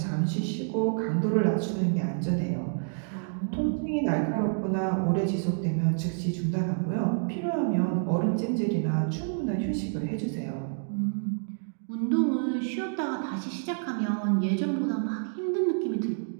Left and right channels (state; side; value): silent; left; digital silence